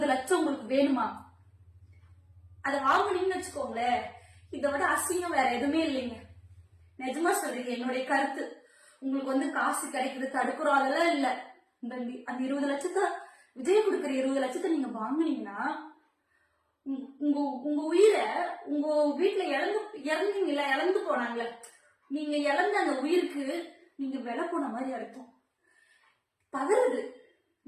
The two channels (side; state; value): both; identical; correlation 1.00